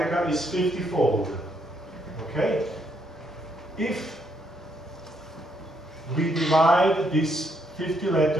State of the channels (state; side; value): normal; both; correlation 0.74